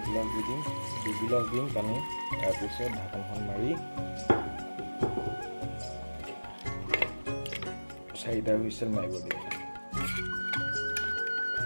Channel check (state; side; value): inverted; both; correlation -1.00